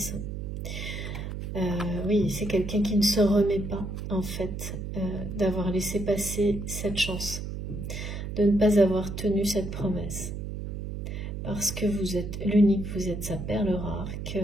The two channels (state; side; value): noise; right; hum, 6 dB below the sound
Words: Oui, c'est quelqu'un qui ne se remet pas, en fait, d'avoir laissé passer cette chance, de ne pas avoir tenu cette promesse. Parce que vous êtes l'unique, vous êtes sa perle rare, que